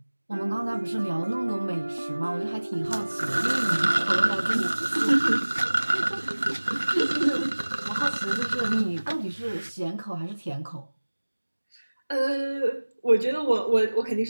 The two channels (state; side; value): inverted; both; correlation -1.00